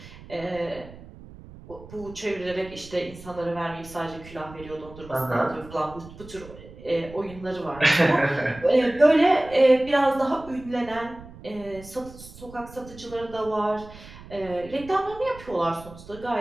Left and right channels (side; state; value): right; noise; rumble, 18 dB below the sound